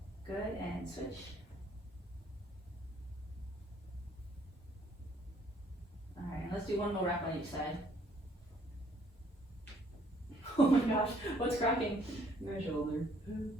Good, and switch. Alright, let's do one more rep on each side. Oh my gosh, what's cracking? My shoulder.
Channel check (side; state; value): both; normal; correlation 0.63